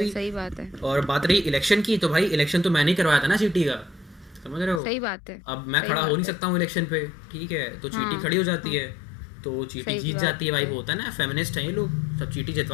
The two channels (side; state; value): right; drops out; at 4.8 s